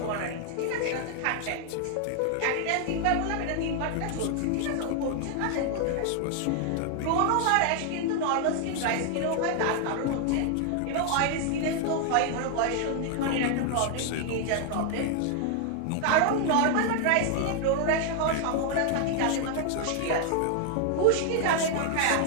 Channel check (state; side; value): different; both; correlation 0.00